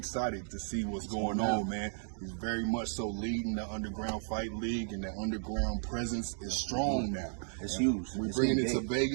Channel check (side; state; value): left; silent; digital silence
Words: to see what's going on, man. He's very much so leading the underground fight league, and the underground presence is strong now. It's huge. We're bringing it to